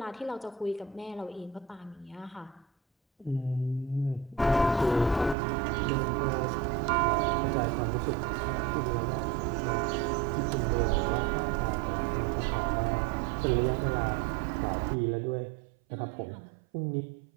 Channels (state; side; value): drops out; left; at 5.4 s